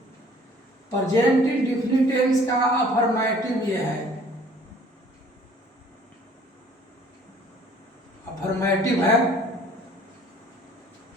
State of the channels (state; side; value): normal; both; correlation 0.54